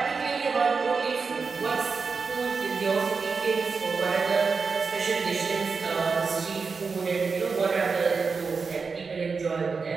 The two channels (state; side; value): quieter; left; 4.9 dB